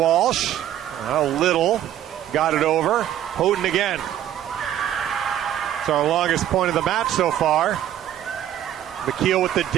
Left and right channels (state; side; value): quieter; left; 11.5 dB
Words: Little. got it over. Houghton again. It's our longest point of the match so far. McKeel with the